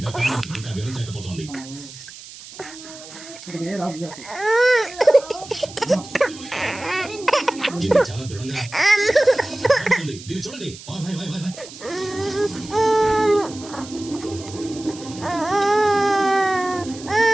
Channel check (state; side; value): noise; right; hiss, 16 dB below the sound